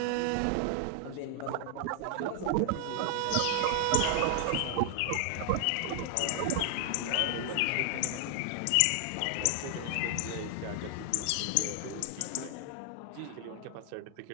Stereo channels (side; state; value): both; different; correlation 0.00